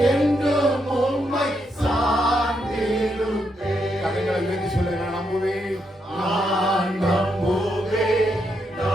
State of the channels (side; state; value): both; normal; correlation 0.80